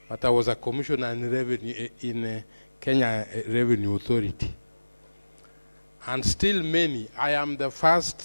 but I was a commissioner in Kenya Revenue Authority. And still many, I am the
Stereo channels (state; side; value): inverted; both; correlation -1.00